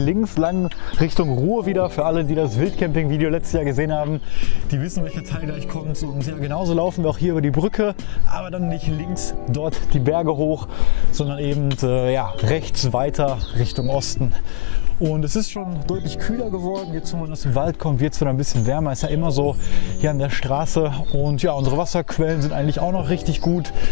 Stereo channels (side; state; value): right; quieter; 24.2 dB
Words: lang Richtung Ruhr wieder. Für alle, die das Wildcamping-Video letztes Jahr gesehen haben, die wissen, welcher Teil gleich kommt. Und ja, genauso laufen wir auch hier über die Brücke, aber dann nicht links dort die Berge hoch, sondern eben ja, rechts weiter Richtung Osten. Und es ist schon deutlich kühler geworden. Jetzt, wo man aus dem Wald kommt, wird es wieder ein bisschen wärmer. Ist ja immer so hier an der Straße. Und ja, unsere Wasserquellen sind eigentlich auch noch richtig gut.